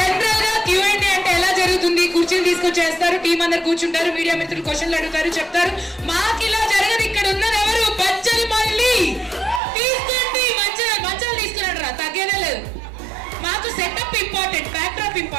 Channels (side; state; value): left; drops out; at 9.6 s